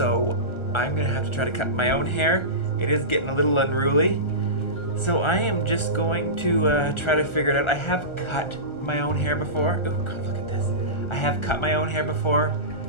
I'm gonna have to try to cut my own hair. It is getting a little unruly. So I am just going to try to figure it out. I have cut my own hair before. Oh God, look at this. I have cut my own hair before.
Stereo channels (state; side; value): late; right; 1.4 ms